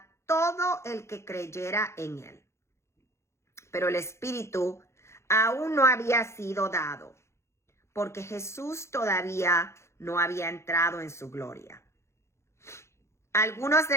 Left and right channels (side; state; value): right; late; 0.13 ms